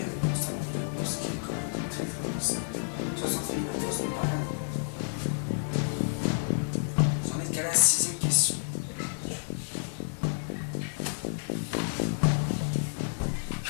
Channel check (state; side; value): silent; right; digital silence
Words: vos 100 000 euros, ce qui est quand même très très possible. 60 000 euros, ce n'est pas rien. Vous en êtes qu'à la 6e question.